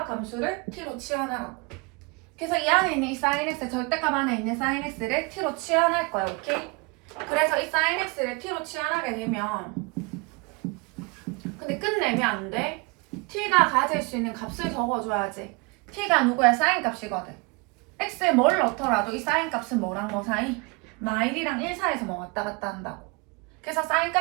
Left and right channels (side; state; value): left; quieter; 28.3 dB